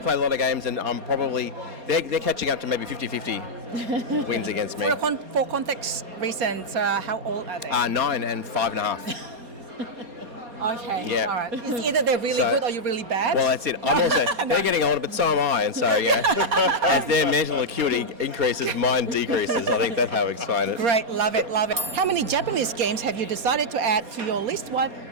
a lot of games, and I'm probably they're catching up to maybe 50-50 wins against me. For context reasons, how old are they? 9 and 5.5. Okay, Yeah. all right. It's either they're really So- good or you're really bad. Well, that's it. I'm also they're getting older, but so am I, and so as their mental acuity increases, mine decreases. I think that's how we explain it. Great, love it, love it. How many Japanese games have you decided to add to your list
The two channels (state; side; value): late; left; 4.2 ms